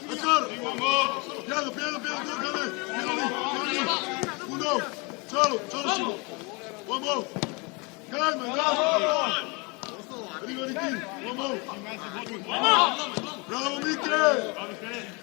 Piano, piano, piano, uno, solo, Simo. Uomo, calma, arriva Ricky, uomo. Bravo Michele!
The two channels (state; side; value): quieter; right; 29.6 dB